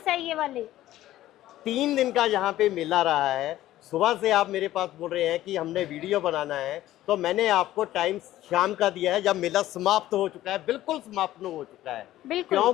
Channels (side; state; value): right; quieter; 14.5 dB